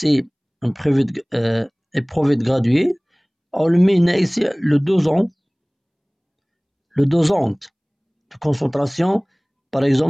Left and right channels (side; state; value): both; identical; correlation 1.00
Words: éprouvé de gradué, on le met ici le dosante de concentration, par